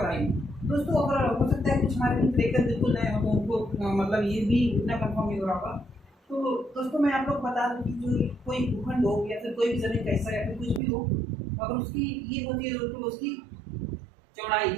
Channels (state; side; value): drops out; left; at 10.8 s